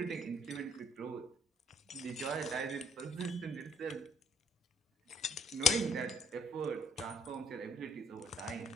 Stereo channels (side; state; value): both; normal; correlation 0.61